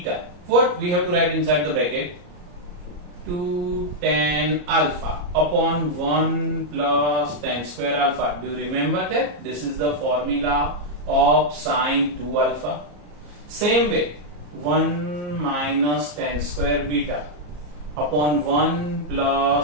what we have to write inside the bracket? 2 tan alpha upon 1 plus tan square alpha. Do you remember that? This is the formula of sin 2 alpha. Same way, 1 minus tan square beta upon 1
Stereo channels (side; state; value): left; late; 34 ms